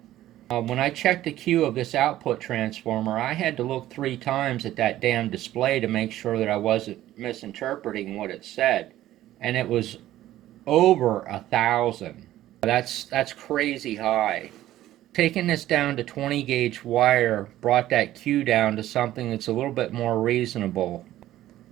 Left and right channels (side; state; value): left; quieter; 14.0 dB